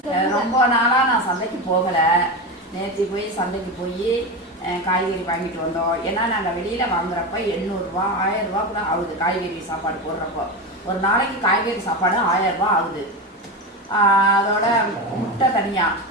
ரொம்ப நாளா நான் சந்தைக்கு போகல. நேற்று போய் சந்தைக்கு போய் காய்கறி வாங்கிட்டு வந்தோம். ஏன்னா நாங்கள் வெளியில வாங்குறப்ப 800 ரூபா 1000 ரூபா கூட ஆகுது. காய்கறி சாப்பாடு போடுறப்போ ஒரு நாளைக்கு காய்கறி சாப்பாடு 1000 ரூபா ஆகுது. அதோட முட்டை தனியா,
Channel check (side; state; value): both; normal; correlation 0.19